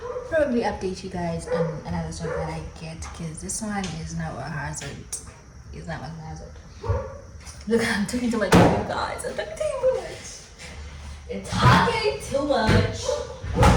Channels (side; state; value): both; identical; correlation 1.00